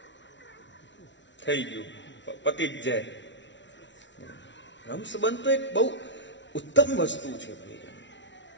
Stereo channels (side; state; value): right; late; 0.53 ms